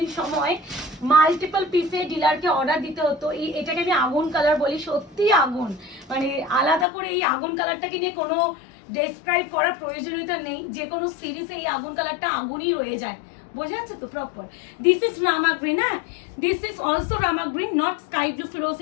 সময় মাল্টিপল পিসে ডিলারকে অর্ডার দিতে হতো। এটাকে আমি আগুন কালার বলি, সত্যি আগুন, মানে আলাদা করে এই আগুন কালারটাকে নিয়ে কোনো ডেসক্রাইব করার প্রয়োজনীয়তা নেই, যে কোনো সিরিজে এই আগুন কালারটা আগুনই রয়ে যায়, বোঝা যাচ্ছে তো proper. This is Rama green, হ্যাঁ this is also Rama green, not sky blue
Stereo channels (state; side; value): drops out; right; at 6.9 s